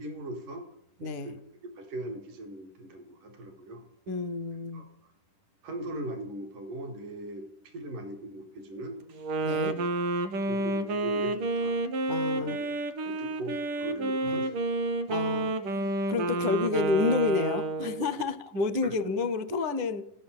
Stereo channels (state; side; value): late; left; 10 ms